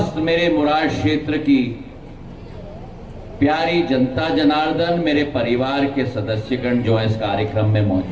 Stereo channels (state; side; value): identical; both; correlation 1.00